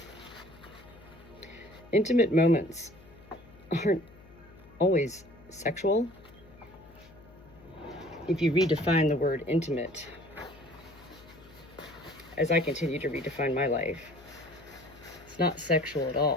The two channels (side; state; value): left; noise; hum, 23 dB below the sound